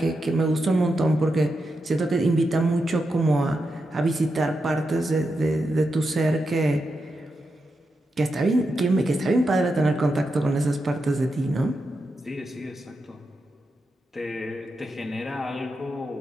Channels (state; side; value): normal; both; correlation 0.87